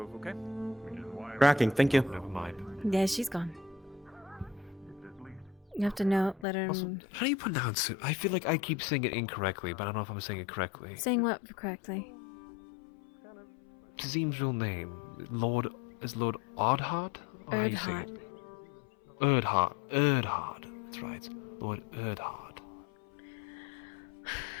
okay? Tracking, thank you. Never mind. Yeah, she's gone. You have to let her... Also, how do you pronounce it? I feel like I keep saying it incorrectly, but I don't know if I'm saying it correctly. Saying what correctly? Tazim's real name. Is Lord Ardhart? Or how you say it? Erdhart. Erdhart. That's right. Lord Erdhart.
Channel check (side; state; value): right; drops out; at 6.5 s